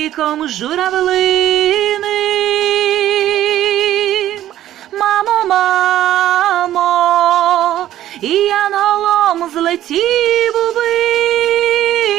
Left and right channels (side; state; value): left; quieter; 12.8 dB